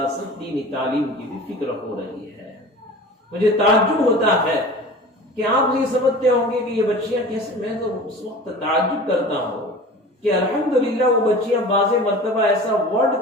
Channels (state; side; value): normal; both; correlation 0.38